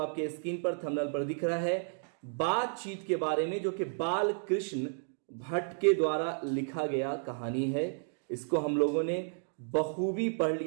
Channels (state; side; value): silent; left; digital silence